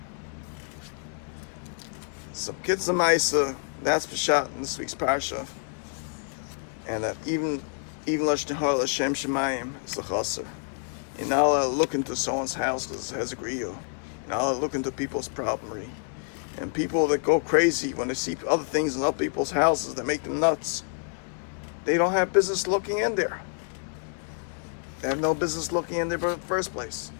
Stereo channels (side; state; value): right; silent; 59 dB below the other